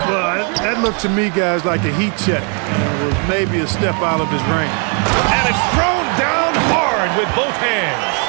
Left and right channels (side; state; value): left; quieter; 37.5 dB